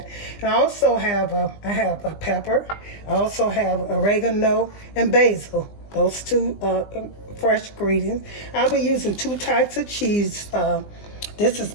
And I also have a pepper. I also have oregano and basil. Those 2 fresh ingredients. I'll be using 2 types of cheese. This is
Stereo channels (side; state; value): right; late; 20 ms